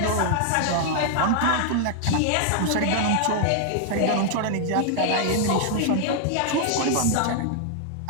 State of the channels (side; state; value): both; different; correlation 0.00